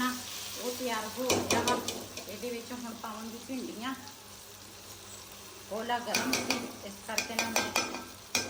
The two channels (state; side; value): identical; both; correlation 1.00